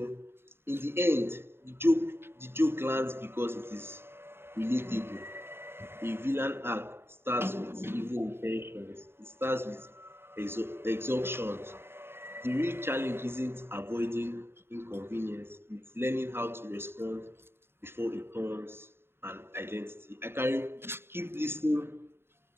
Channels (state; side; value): late; left; 0.11 ms